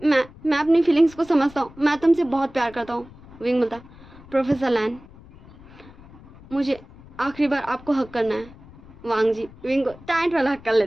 मैं अपनी फीलिंग्स को समझता हूँ, मैं तुमसे बहुत प्यार करता हूँ। विंग बोलता, प्रोफेसर लैन मुझे आखिरी बार आपको हक करना है। वांग जी विंग को टाइट वाला हक कर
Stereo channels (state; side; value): noise; left; rumble, 21 dB below the sound